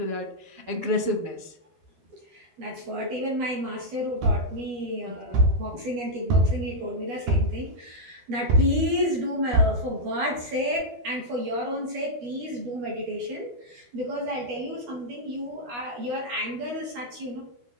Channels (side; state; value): left; late; 12 ms